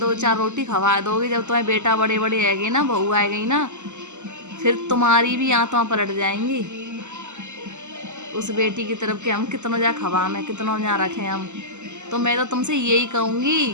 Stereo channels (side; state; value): left; late; 0.84 ms